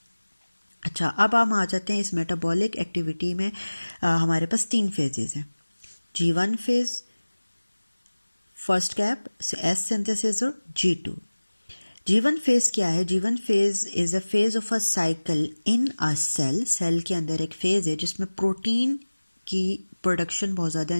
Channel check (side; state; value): both; inverted; correlation -1.00